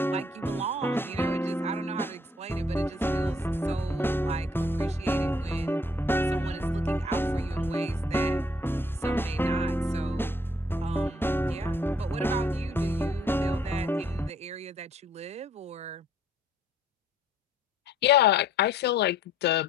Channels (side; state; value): both; normal; correlation 0.62